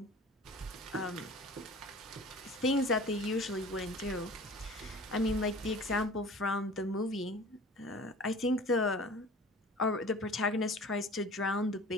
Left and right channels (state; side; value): normal; both; correlation 0.43